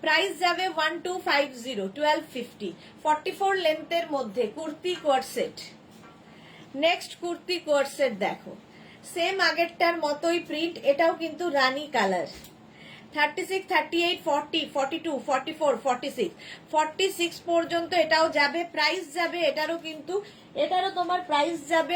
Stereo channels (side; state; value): both; identical; correlation 1.00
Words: প্রাইস যাবে 1250, 1250। 44 লেন্থের মধ্যে কুর্তি কোয়ারসেট। নেক্সট কুর্তি কোয়ারসেট দেখো, সেম আগেরটার মতোই প্রিন্ট, এটাও কিন্তু রানী কালার। 36, 38, 40, 42, 44, 46, 46 পর্যন্ত এটাও যাবে। প্রাইস যাবে এটারও কিন্তু, এটারও তোমার প্রাইস যাবে